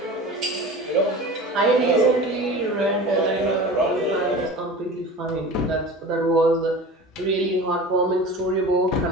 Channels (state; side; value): normal; both; correlation 0.36